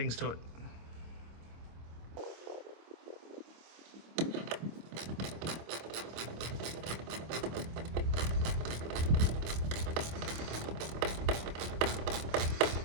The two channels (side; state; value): left; late; 25 ms